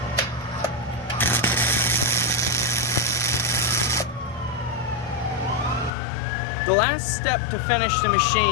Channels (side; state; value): right; drops out; at 5.9 s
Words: The last step to finish the